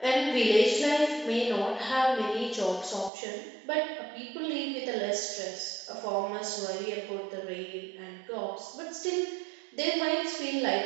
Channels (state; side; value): drops out; left; at 3.1 s